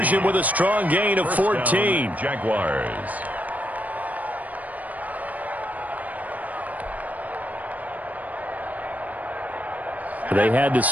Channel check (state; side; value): late; left; 0.074 ms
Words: with a strong gain of 14. Jaguars. They had to